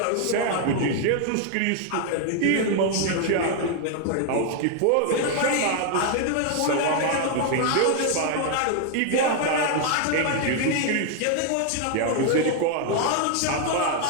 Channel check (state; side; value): different; both; correlation 0.00